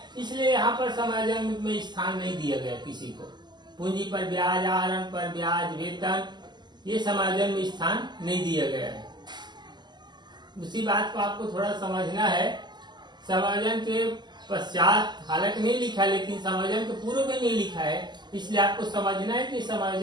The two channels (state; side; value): late; left; 0.21 ms